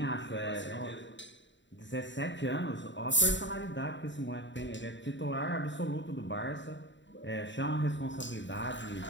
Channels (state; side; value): late; right; 0.53 ms